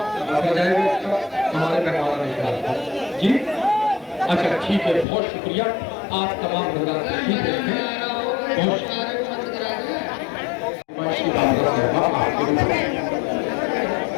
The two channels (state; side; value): drops out; right; at 5.1 s